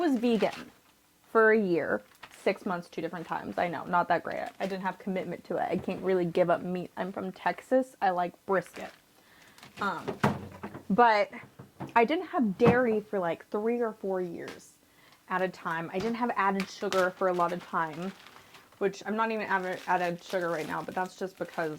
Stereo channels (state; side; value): identical; both; correlation 1.00